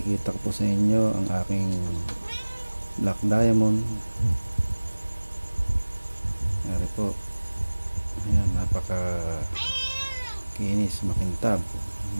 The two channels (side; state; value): both; inverted; correlation -1.00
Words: ko po sa inyo ang aking black diamond. Ari po, ayan, napaka kinis, makintab,